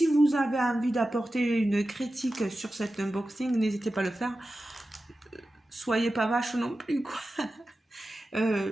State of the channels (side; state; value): both; normal; correlation 0.93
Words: vous avez envie d'apporter une critique sur cet unboxing, n'hésitez pas à le faire. Soyez pas vache non plus, quoi.